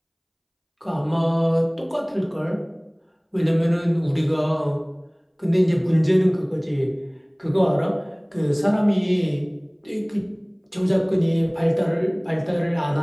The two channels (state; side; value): identical; both; correlation 1.00